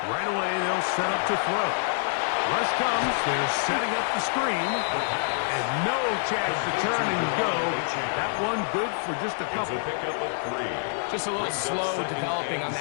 Right away, they'll set up to throw. Rush comes. They're setting up the screen. And no chance to turn and go. That one good for just a couple. It's a pickup of 3. Just a little slow developing on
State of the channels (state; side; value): silent; right; digital silence